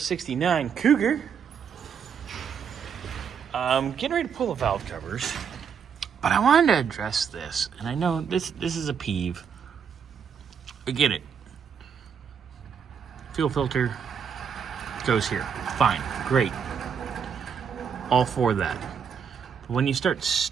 Cougar. Getting ready to pull the valve covers, but I wanted to address this, and I know this is a peeve. I get it. Fuel filter goes here. Fine, great. All for that. But when you start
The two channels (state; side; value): quieter; left; 7.1 dB